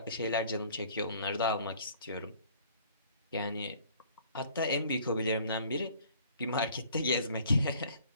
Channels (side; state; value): both; inverted; correlation -0.55